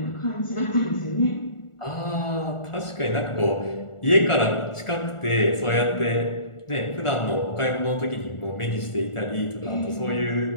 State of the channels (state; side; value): late; right; 1.4 ms